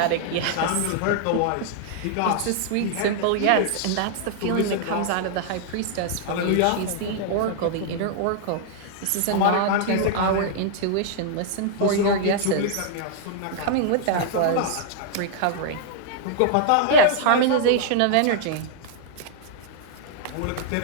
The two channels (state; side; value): different; both; correlation -0.01